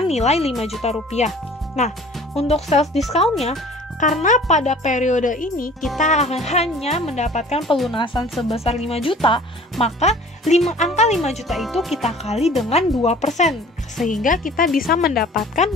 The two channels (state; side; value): normal; both; correlation 0.48